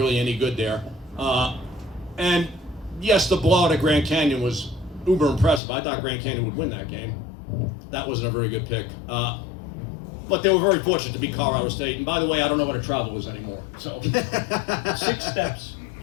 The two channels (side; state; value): right; drops out; at 5.6 s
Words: any good there. And yes, the blowout at Grand Canyon was uber impressive. I thought Grand Canyon would win that game. That wasn't a very good pick. But they were very fortunate to beat Colorado State. And by the way, I don't know what a travel is anymore. So 6 steps.